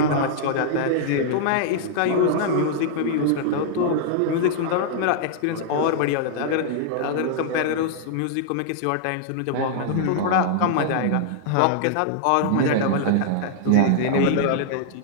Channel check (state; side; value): different; both; correlation -0.01